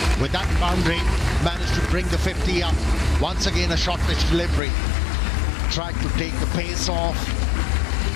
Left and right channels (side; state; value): right; drops out; at 4.6 s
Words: With that boundary, managed to bring the 50 up. Once again, a short pitch delivery. Tried to take the pace off,